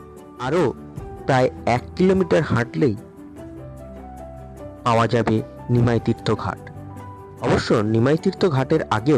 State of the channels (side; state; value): both; identical; correlation 1.00